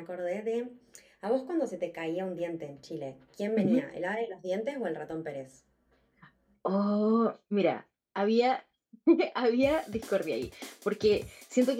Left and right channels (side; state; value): both; identical; correlation 1.00